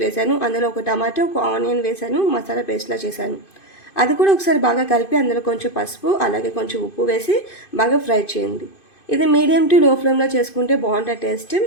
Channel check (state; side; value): late; right; 2.5 ms